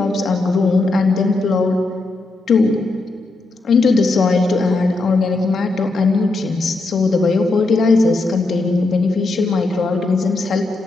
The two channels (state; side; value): quieter; right; 3.2 dB